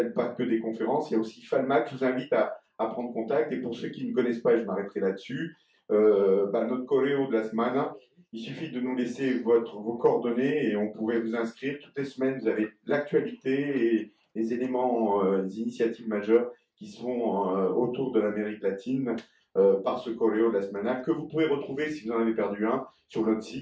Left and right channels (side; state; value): both; identical; correlation 1.00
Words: pas que des conférences. Il y a aussi FALMAC. Je vous invite à prendre contact, et pour ceux qui ne connaissent pas, et je m'arrêterai là-dessus, notre choréo de la semaine, il suffit de nous laisser vos coordonnées et on pourrait vous inscrire. Toutes les semaines, vous avez l'actualité et les éléments, les initiatives majeures qui sont autour de l'Amérique latine par ce choréo de la semaine, que vous pouvez retrouver, si vous en avez perdu un, sur notre